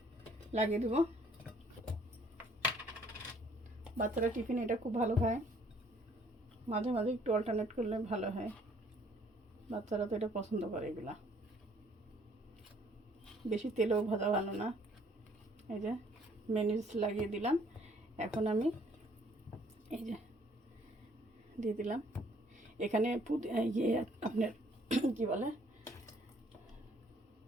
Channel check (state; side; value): normal; both; correlation 0.62